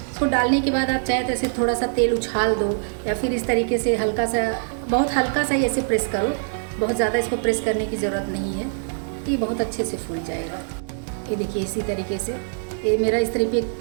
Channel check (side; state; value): left; silent; digital silence